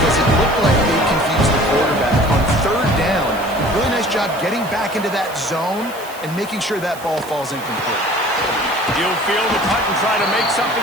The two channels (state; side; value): noise; right; hiss, 17 dB below the sound